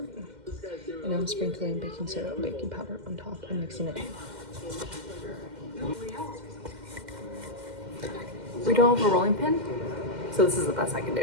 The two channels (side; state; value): left; late; 2.1 ms